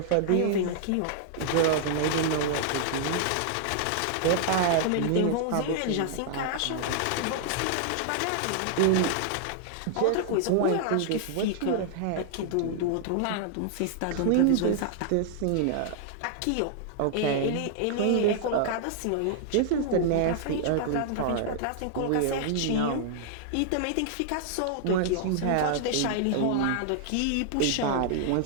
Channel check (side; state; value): both; different; correlation -0.01